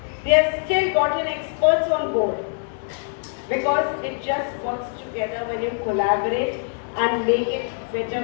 They have still gotten experts on board. Because it just works together when you collaborate and make it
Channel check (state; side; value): silent; right; 63 dB below the other